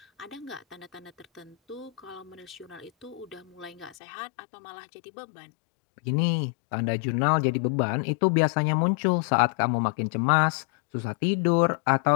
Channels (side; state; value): right; drops out; at 4.0 s